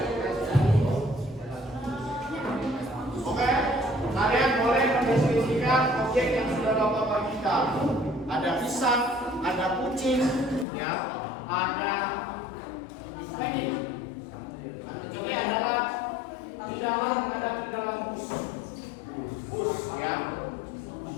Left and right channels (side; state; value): right; drops out; at 10.7 s